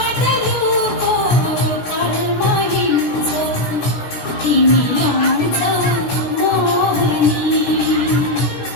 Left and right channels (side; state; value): right; late; 16 ms